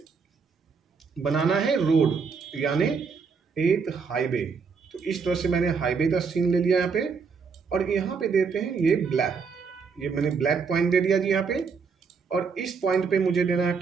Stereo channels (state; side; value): quieter; left; 5.5 dB